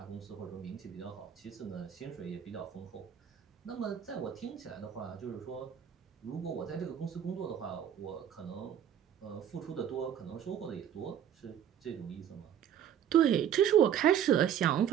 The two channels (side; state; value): left; quieter; 9.5 dB